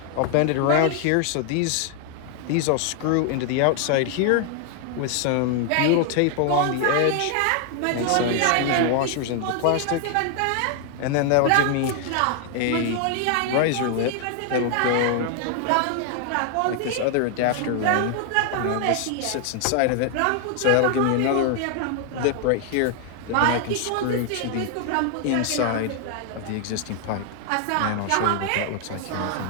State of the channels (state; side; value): different; both; correlation 0.00